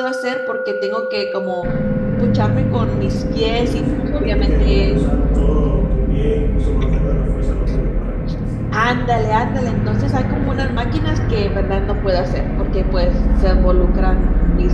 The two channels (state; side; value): identical; both; correlation 1.00